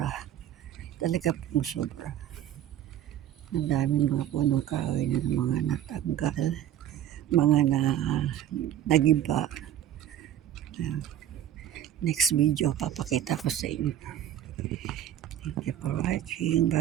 Talaga pong sobra. Ang daming mga punong kahoy na mga natanggal, mga nagiba. Next video, papakita ko sa inyo. Thank you for watching.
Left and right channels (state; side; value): quieter; left; 11.2 dB